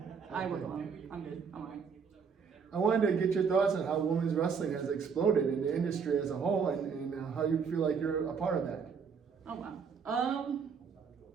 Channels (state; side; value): quieter; left; 6.1 dB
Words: I work alone. I'm good. I'm alright. I wanted to get your thoughts on how women's wrestling has exploded in the industry as a whole, and how you feel like you're a part of that. Oh wow.